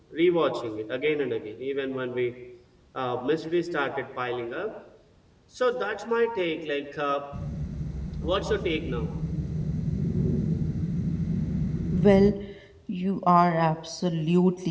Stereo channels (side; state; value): both; identical; correlation 1.00